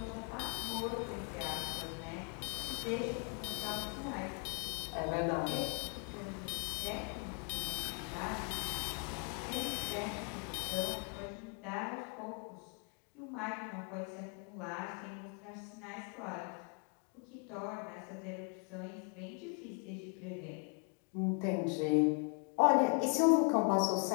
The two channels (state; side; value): quieter; right; 39.8 dB